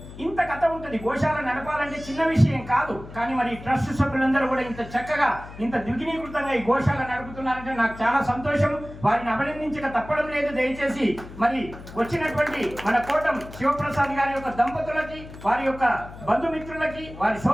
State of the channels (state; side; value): noise; left; hum, 15 dB below the sound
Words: ఇంత కథ ఉంటుంది. గోశాల నడపాలంటే చిన్న విషయం కాదు, కానీ మరి ట్రస్ట్ సభ్యులందరూ కూడా ఇంత చక్కగా ఇంత ద్విగుణీకృతంగా ఈ గోశాల నడుపుతున్నారంటే నాకు చాలా సంతోషం. వారిని అభినందించక తప్పడం లేదు. దయచేసి మరి వచ్చినటువంటి మన కోటం శివప్రసాద్ గారి యొక్క దంపతులకి, వారి యొక్క బంధుమిత్రులకి, వారి